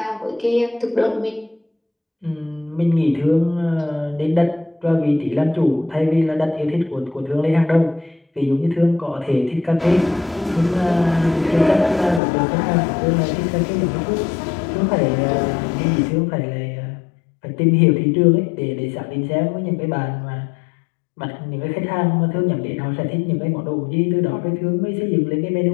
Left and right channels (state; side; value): drops out; right; at 12.2 s